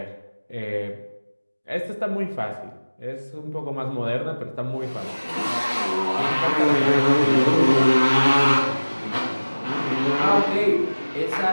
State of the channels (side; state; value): both; inverted; correlation -1.00